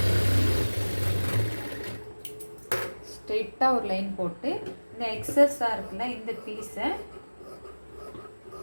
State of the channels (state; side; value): inverted; both; correlation -1.00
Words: ஸ்ட்ரெயிட்டாக ஒரு லைன் போட்டு இந்த எக்ஸஸாக இருக்குல்ல இந்த பீஸை